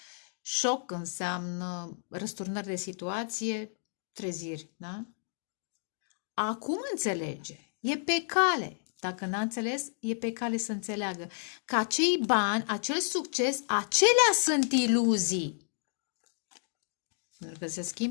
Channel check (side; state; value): right; silent; digital silence